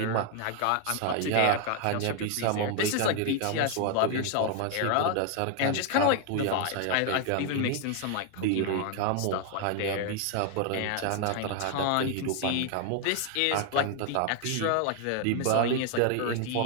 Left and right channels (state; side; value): different; both; correlation 0.00